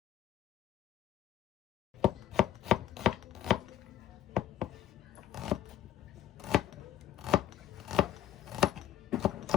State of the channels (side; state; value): right; quieter; 11.1 dB